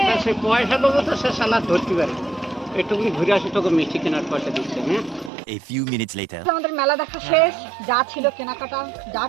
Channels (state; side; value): drops out; left; at 5.3 s